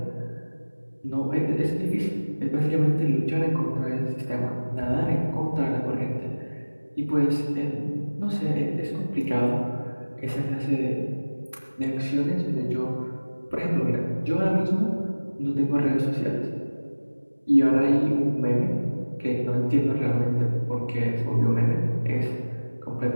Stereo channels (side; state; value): both; inverted; correlation -1.00